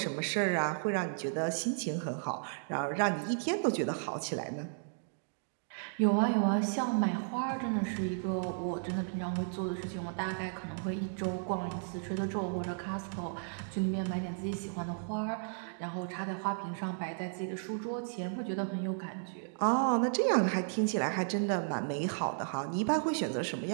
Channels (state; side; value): silent; left; digital silence